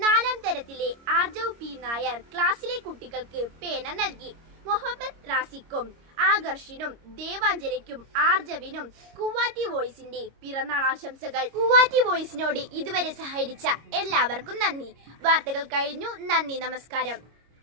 4ാം തരത്തിലെ ആർജവ് P നായർ ക്ലാസ്സിലെ കുട്ടികൾക്ക് പേന നൽകി. മുഹമ്മദ് റാസിക്കും ആകർഷിനും ദേവാഞ്ജനയ്ക്കും ആർജവിനും കുവാറ്റി വോയിസിന്റെ പിറന്നാൾ ആശംസകൾ. കുവാറ്റി വോയിസിനോട് ഇതുവരെ സഹകരിച്ച എല്ലാവർക്കും നന്ദി. വാർത്തകൾ കഴിഞ്ഞു. നന്ദി, നമസ്കാരം.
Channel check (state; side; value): late; left; 26 ms